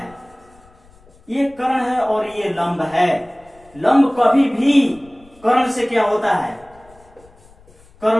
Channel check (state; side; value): noise; left; rumble, 28 dB below the sound